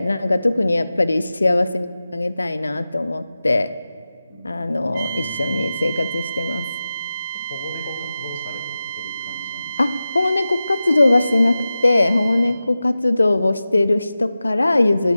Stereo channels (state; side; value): inverted; both; correlation -0.94